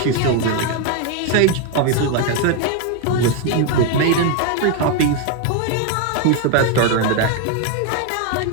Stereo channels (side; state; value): both; different; correlation 0.01